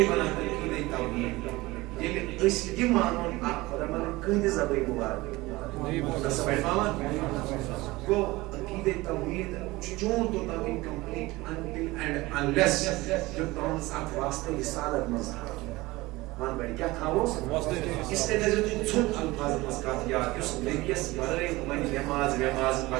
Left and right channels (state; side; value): quieter; left; 20.4 dB